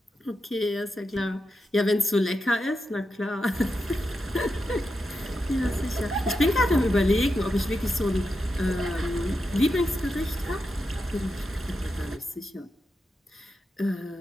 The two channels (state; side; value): normal; both; correlation 0.87